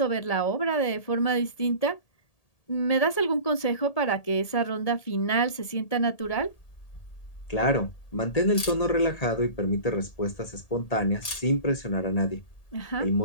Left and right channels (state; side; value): late; right; 1.8 ms